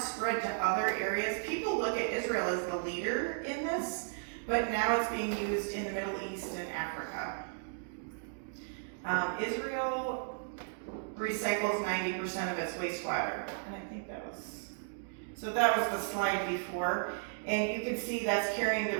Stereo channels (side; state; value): left; silent; digital silence